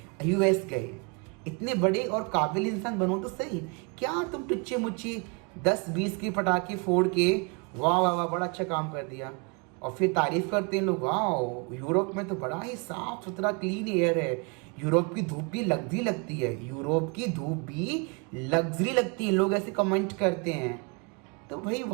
यूएस गए। इतने बड़े और काबिल इंसान बनो तो सही, क्या तुम टुच्चे मुच्चे 10-20 के पटाखे फोड़ के वाह वाह वाह बड़ा अच्छा काम कर दिया, और फिर तारीफ करते हैं लोग, वाह यूरोप में तो बड़ा ही साफ सुथरा क्लीन एयर है, यूरोप की धूप भी लग्जरी लगती है, यूरोप की धूप भी लग्जरी लगती है, लोग ऐसे कमेंट करते हैं। तो भाई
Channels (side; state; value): left; quieter; 32.7 dB